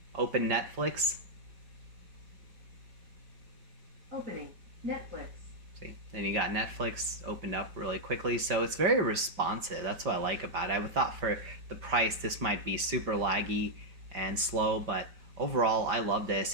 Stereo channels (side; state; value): left; late; 5.0 ms